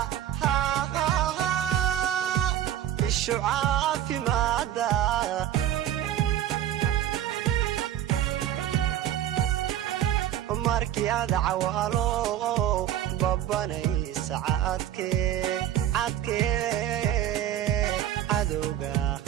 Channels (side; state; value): left; quieter; 11.3 dB